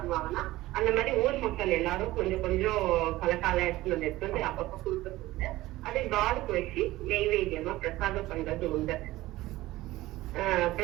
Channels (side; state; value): left; quieter; 17.4 dB